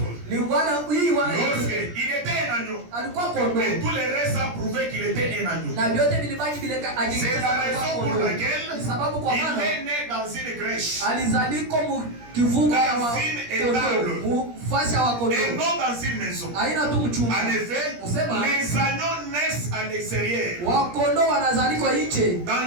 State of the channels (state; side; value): late; left; 17 ms